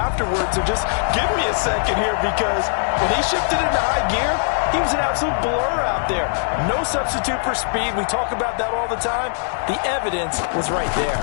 So just give me a second here, because when he shifted into high gear, he was an absolute blur out there. No substitute for speed. We talk about that all the time. The evidence was right there.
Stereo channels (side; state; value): right; silent; 61 dB below the other